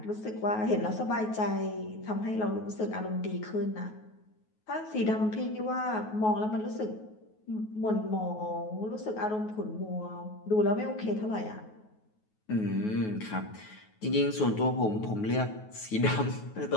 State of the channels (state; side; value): late; right; 9.3 ms